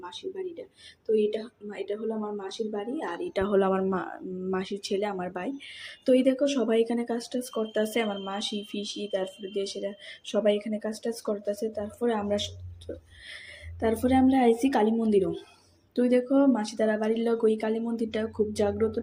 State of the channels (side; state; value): both; identical; correlation 1.00